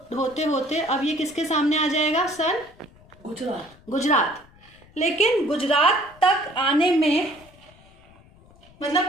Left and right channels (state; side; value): noise; left; rumble, 26 dB below the sound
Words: होते अब ये किसके सामने आ जाएगा? सन गुजरात। लेकिन गुजरात तक आने में मतलब